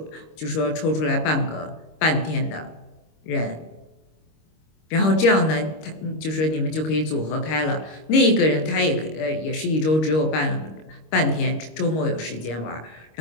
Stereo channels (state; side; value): late; right; 25 ms